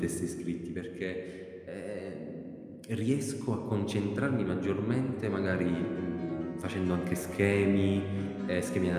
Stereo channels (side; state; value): both; identical; correlation 1.00